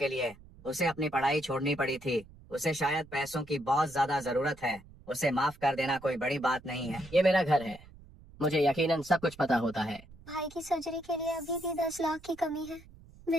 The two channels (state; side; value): noise; right; rumble, 22 dB below the sound